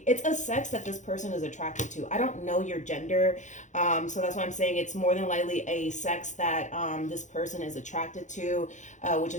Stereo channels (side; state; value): right; late; 0.35 ms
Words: It's a sex that this person is attracted to. I don't know your gender, so that's why I'm saying it's more than likely a sex that this person is attracted to, which